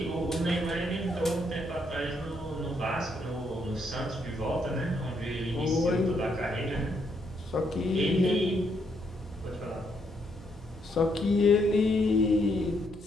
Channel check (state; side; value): noise; right; hum, 19 dB below the sound